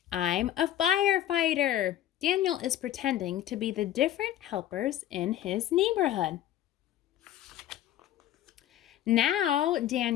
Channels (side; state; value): right; quieter; 12.4 dB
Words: I'm a firefighter. Daniel is pretending to be the different helpers in his neighborhood. Now